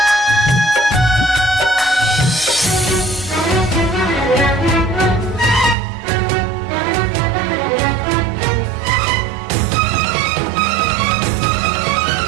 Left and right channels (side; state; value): left; drops out; at 5.8 s